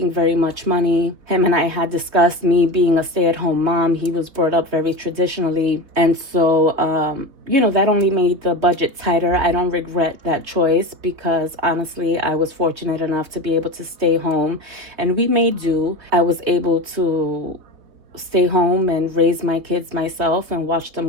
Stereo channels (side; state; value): left; late; 3.9 ms